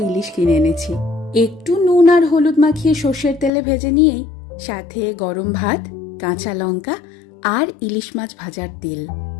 ইলিশ কিনে এনেছি। একটু নুন আর হলুদ মাখিয়ে সর্ষের তেলে ভেজে নিয়েই সাথে গরম ভাত, কাঁচা লঙ্কা আর ইলিশ মাছ ভাজার তেল।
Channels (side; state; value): right; drops out; at 3.5 s